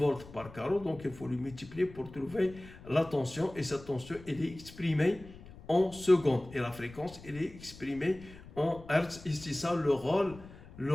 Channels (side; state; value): left; noise; rumble, 18 dB below the sound